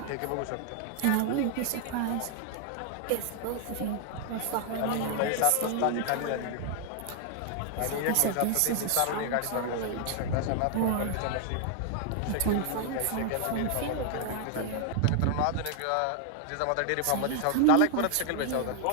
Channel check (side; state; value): both; different; correlation 0.00